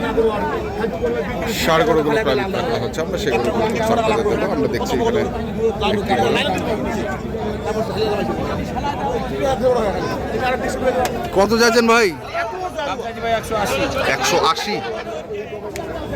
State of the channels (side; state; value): both; identical; correlation 1.00